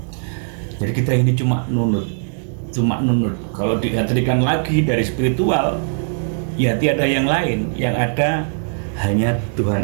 Jadi kita ini cuma nunut. Kalau diartikan lagi dari spiritual, ya tiada yang lain, yang ada hanya Tuhan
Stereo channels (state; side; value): silent; left; 66 dB below the other